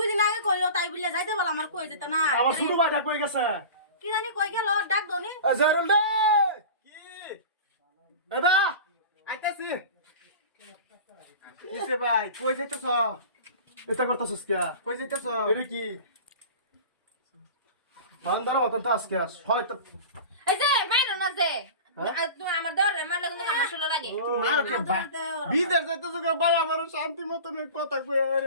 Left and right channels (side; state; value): both; inverted; correlation -0.35